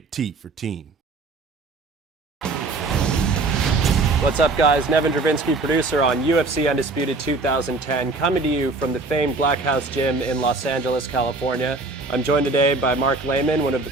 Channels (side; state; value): left; quieter; 3.4 dB